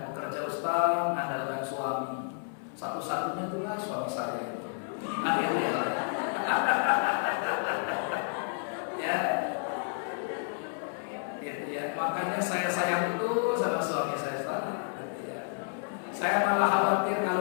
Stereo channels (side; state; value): right; silent; digital silence